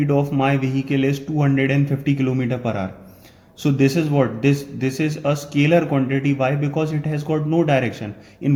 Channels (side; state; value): both; identical; correlation 1.00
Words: of my vehicle is 250 km per hour, so this is what this is a scalar quantity. Why? Because it has got no direction.